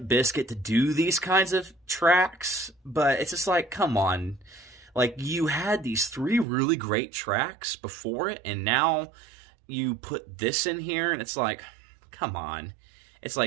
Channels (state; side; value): drops out; left; at 6.5 s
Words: Bizkit to do these kinds of tracks, but it's just like, come on. Like, you had these three really great tracks before it, and now you put this in here, and it's like, come on. It's